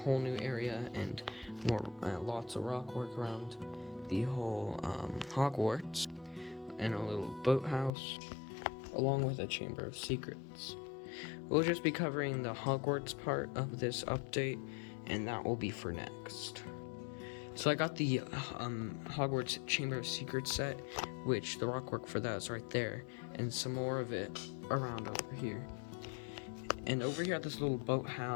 new area and more lots of rock work around the whole Hogwarts, and a little boathouse, along with a Chamber of Secrets. We'll just be covering the Hogwarts part of this update, and that will be for next. So I got the Hogwarts Chamber of Secrets set, which the rock work for that is right there, and some more of it around over here. And over here at this little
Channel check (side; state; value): right; drops out; at 7.9 s